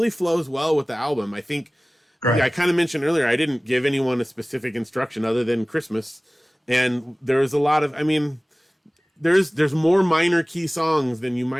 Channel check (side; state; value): both; normal; correlation 0.98